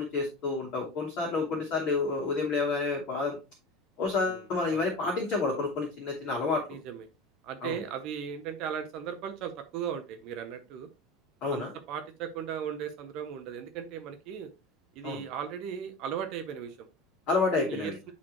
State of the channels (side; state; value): both; normal; correlation 0.30